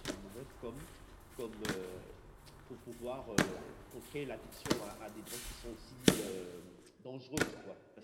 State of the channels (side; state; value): both; identical; correlation 1.00